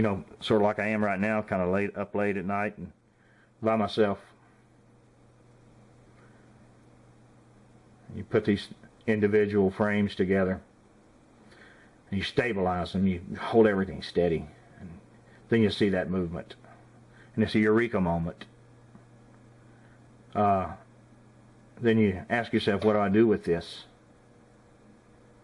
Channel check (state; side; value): identical; both; correlation 1.00